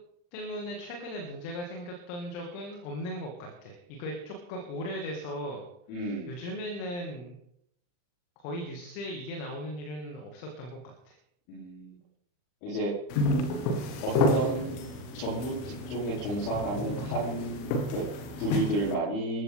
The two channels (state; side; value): late; right; 40 ms